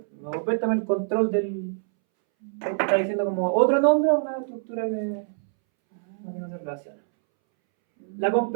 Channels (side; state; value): left; silent; 62 dB below the other